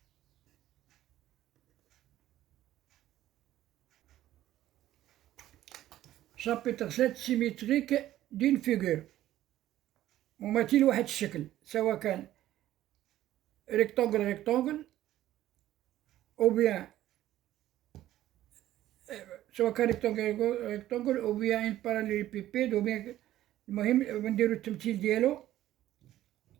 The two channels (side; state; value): left; quieter; 13.7 dB